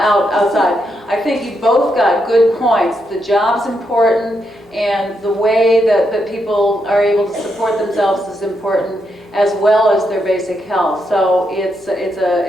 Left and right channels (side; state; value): both; normal; correlation 0.81